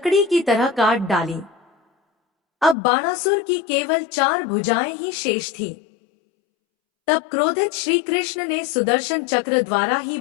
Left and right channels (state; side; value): drops out; right; at 2.8 s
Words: की तरह काट डाली। अब बाणासुर की केवल 4 भुजाएं ही शेष थीं। तब क्रोधित श्री कृष्ण ने सुदर्शन चक्र द्वारा ही